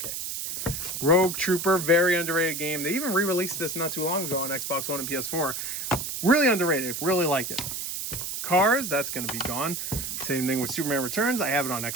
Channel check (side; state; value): right; noise; hiss, 5 dB below the sound